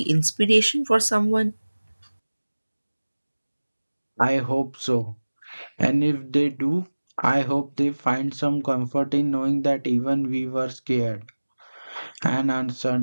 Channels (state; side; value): inverted; both; correlation -1.00